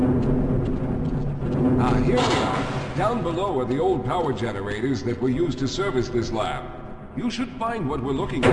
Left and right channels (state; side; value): identical; both; correlation 1.00